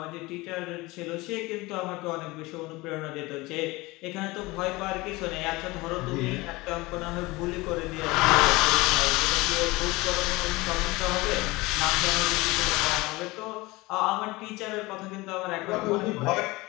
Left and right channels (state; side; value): quieter; right; 21.9 dB